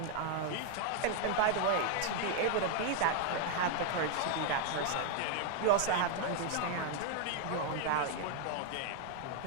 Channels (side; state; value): both; different; correlation 0.00